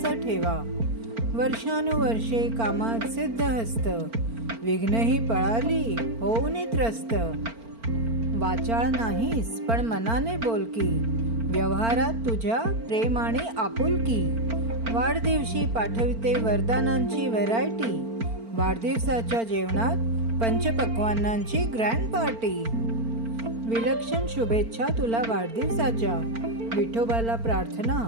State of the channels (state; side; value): late; left; 4.4 ms